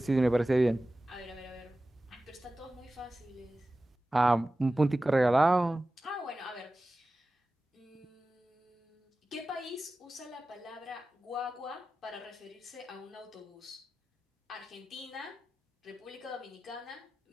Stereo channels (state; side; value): normal; both; correlation 0.96